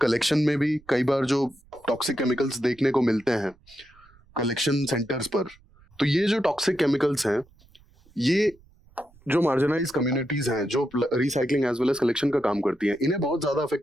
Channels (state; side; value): noise; right; rumble, 28 dB below the sound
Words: में भी कई बार जो टॉक्सिक केमिकल्स देखने को मिलते हैं कलेक्शन सेंटर्स पर। तो ये जो टॉक्सिक केमिकल्स हैं ये जो मार्जिनाइज कम्युनिटीज हैं जो recycling as well as collection का काम करती हैं, इन्हें बहुत ज्यादा